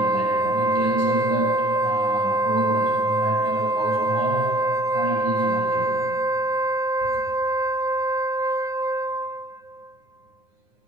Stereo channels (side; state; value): left; late; 9.7 ms